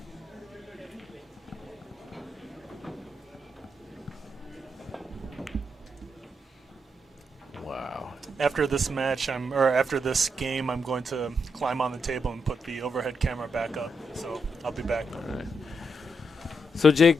Wow. After this match, after this game, I'm going to climb on the table and put the overhead camera back up. So I'll be back. All right. So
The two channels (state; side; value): normal; both; correlation 0.81